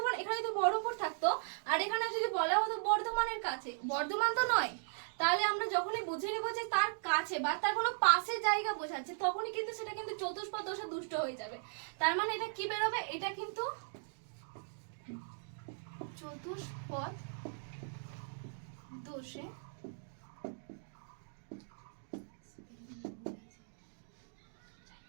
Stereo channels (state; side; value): silent; left; digital silence